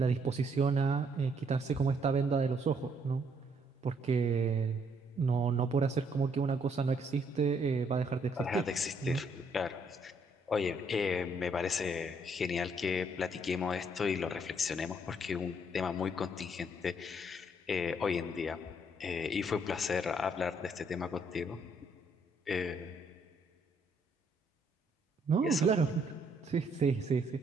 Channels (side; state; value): both; normal; correlation 0.69